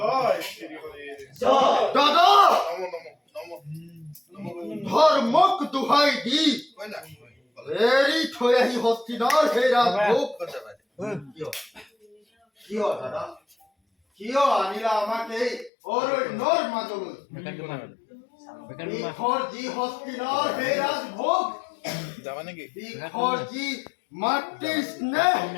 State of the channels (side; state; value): right; drops out; at 15.7 s